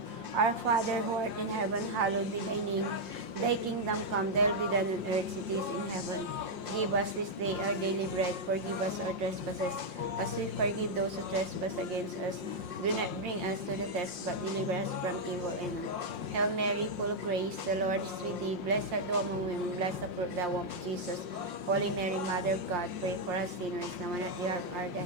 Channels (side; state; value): left; late; 5.6 ms